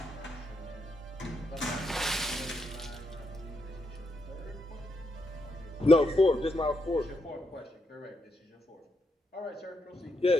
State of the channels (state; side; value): normal; both; correlation 0.81